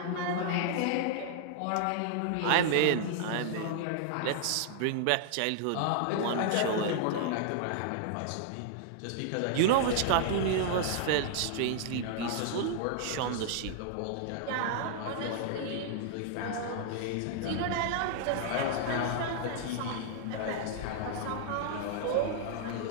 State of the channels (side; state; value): both; different; correlation -0.01